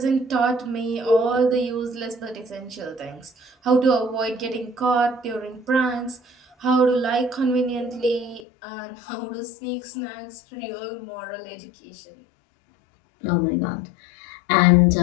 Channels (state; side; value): drops out; right; at 8.5 s